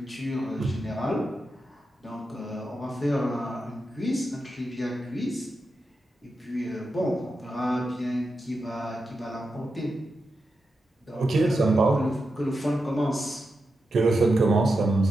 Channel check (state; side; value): normal; both; correlation 0.88